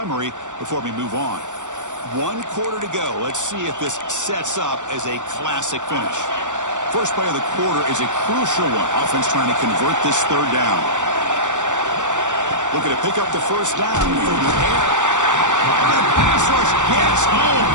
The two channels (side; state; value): left; late; 0.85 ms